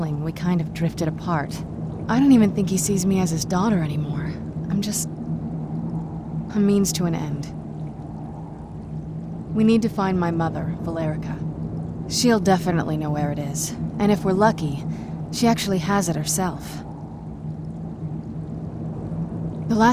we kind of drifted apart. I don't even think he sees me as his daughter anymore. I'm just a means to an end. We need to find my mother, Valerica. She'll definitely know where it is, and if we're lucky, she actually has it herself. The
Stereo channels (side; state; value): both; identical; correlation 1.00